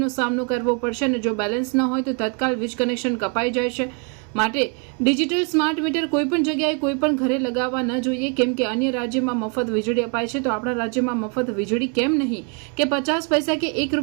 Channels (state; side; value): quieter; left; 36.4 dB